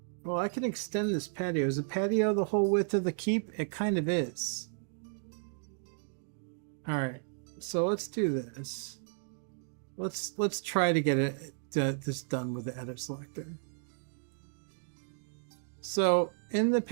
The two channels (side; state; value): left; silent; digital silence